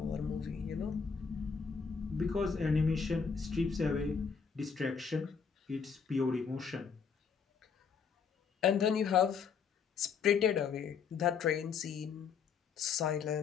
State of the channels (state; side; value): quieter; right; 6.1 dB